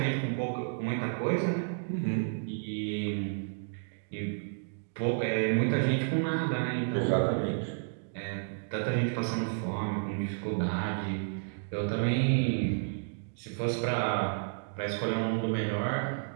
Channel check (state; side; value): silent; left; digital silence